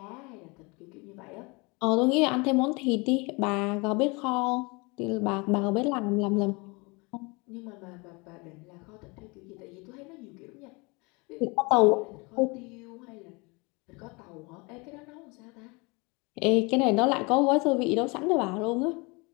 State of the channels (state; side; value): quieter; right; 27.8 dB